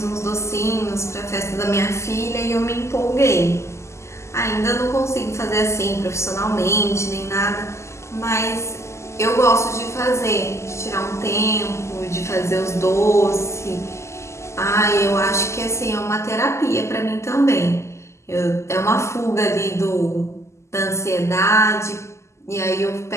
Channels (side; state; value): right; late; 0.13 ms